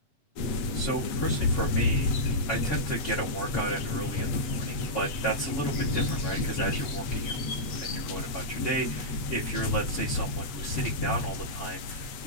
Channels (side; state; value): right; late; 8.2 ms